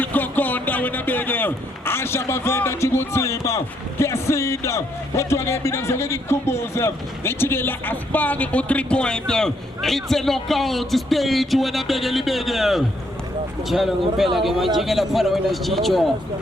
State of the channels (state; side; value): normal; both; correlation 0.72